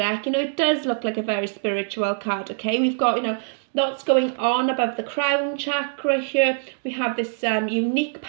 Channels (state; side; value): silent; left; digital silence